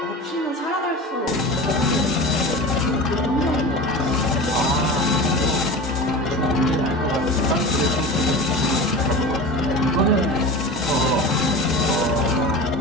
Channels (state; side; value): normal; both; correlation 0.32